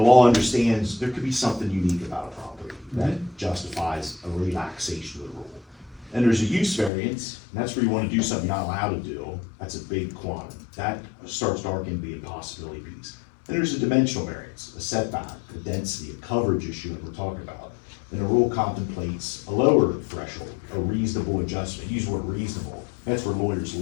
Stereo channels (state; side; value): drops out; right; at 6.9 s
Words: law understands there could be something unique about a property that justifies a relaxation of the rule. And there's a use variance, and that's where you wanna do something you're not allowed to do, that's a big quantum. That starts to arc into the impossibility piece. Then there's a dimensional variance, a setback, a density, a coverage issue that we're talking about. And the rule contemplates a lower threshold, a reasonable adjustment, use the word reasonable, that's where lawyers